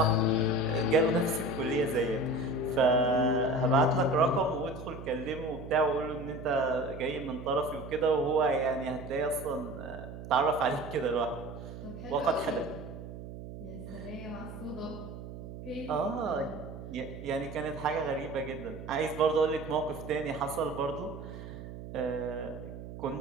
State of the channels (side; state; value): right; noise; hum, 11 dB below the sound